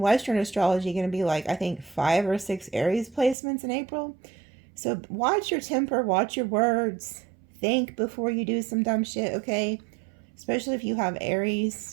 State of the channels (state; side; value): drops out; left; at 3.4 s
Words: astrology going to be like, I think 5 or 6 Aries placements in April. So watch your temper, watch your words, think before you do some dumb shit, okay? Especially if you have